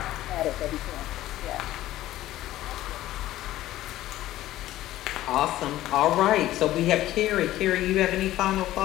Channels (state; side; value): quieter; right; 14.8 dB